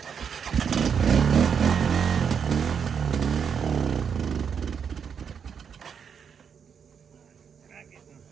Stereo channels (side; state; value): left; quieter; 7.1 dB